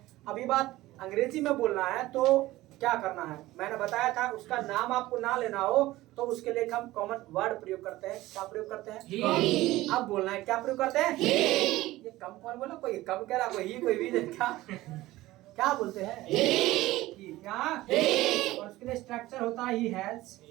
अभी बात अंग्रेजी में बोलना है तो क्या करना है, मैंने बताया था, उसका नाम आपको ना लेना हो तो उसके लिए हम कॉमन वर्ड प्रयोग करते हैं। क्या प्रयोग करते हैं? ही। अब बोलना है, क्या प्रयोग करते हैं? ही। ये कम कौन बोला, कोई कम कह रहा, कोई ही, कोई भी, क्या बोलते हैं? ही। क्या? और उसके लिए स्ट्रक्चर होता है ही हैज,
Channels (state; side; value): quieter; left; 17.4 dB